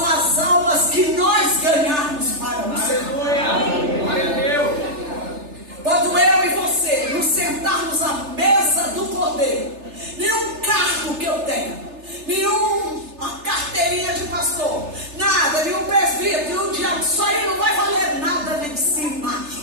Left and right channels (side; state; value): left; late; 3.3 ms